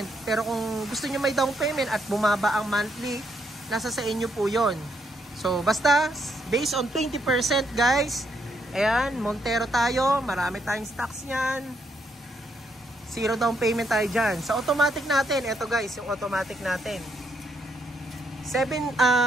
Pero kung gusto nyo may down payment at bumaba ang monthly, nasa sa inyo po yon. So basta, based on 20% guys. Ayan, Montero tayo. Marami tayong stocks nyan. 0 down payment tayo dyan. Sa automatic natin, ito guys, yung automatic natin.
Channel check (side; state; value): both; normal; correlation 0.75